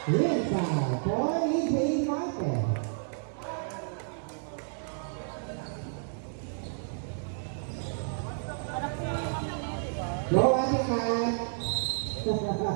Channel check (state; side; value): silent; left; digital silence